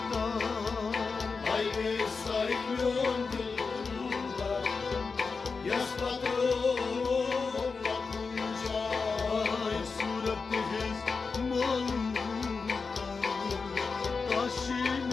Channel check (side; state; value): right; quieter; 4.7 dB